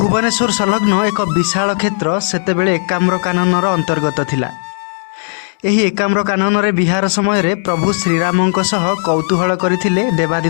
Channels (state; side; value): silent; right; digital silence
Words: संलग्न एक विशाल क्षेत्र सेतेबेले एकाम्र काननर अंतर्गत थिला। एही एकाम्र कानन रे विहार समय रे प्रभु श्रीरामंक सह कौतूहल करथिले